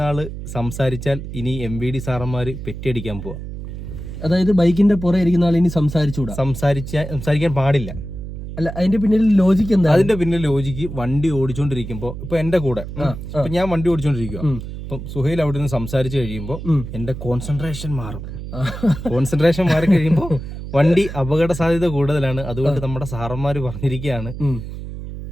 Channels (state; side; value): noise; right; hum, 9 dB below the sound